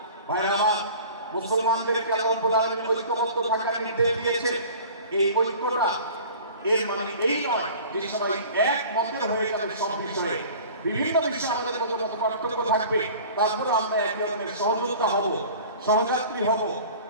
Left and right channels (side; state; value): both; inverted; correlation -0.43